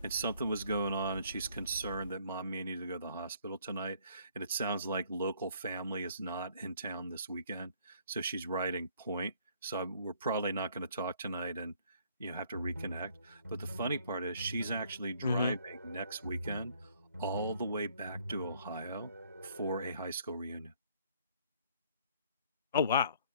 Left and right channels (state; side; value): inverted; both; correlation -0.62